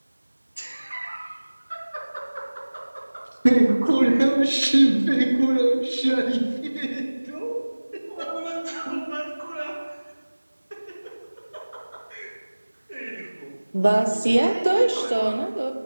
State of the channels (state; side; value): inverted; both; correlation -1.00